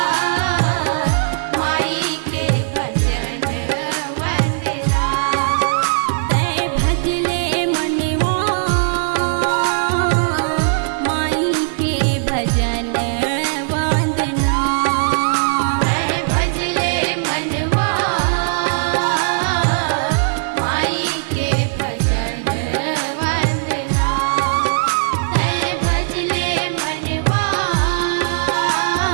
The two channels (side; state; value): left; silent; digital silence